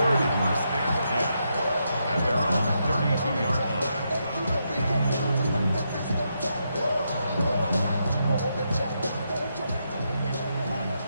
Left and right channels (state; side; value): inverted; both; correlation -0.81